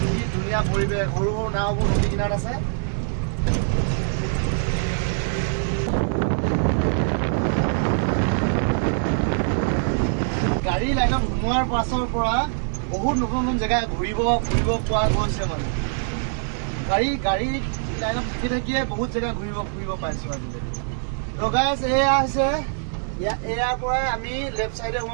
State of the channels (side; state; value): left; silent; digital silence